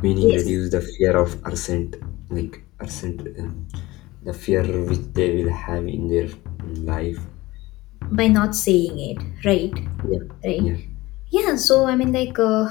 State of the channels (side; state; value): right; quieter; 19.5 dB